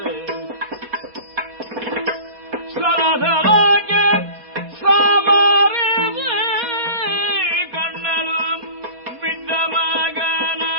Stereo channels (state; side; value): late; left; 4.5 ms